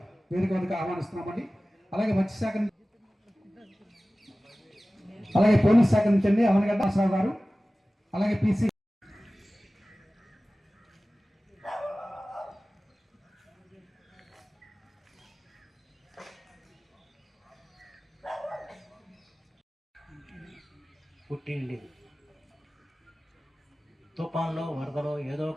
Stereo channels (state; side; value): normal; both; correlation 0.97